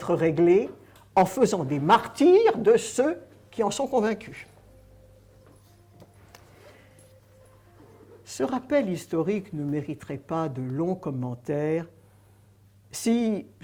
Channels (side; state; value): both; identical; correlation 1.00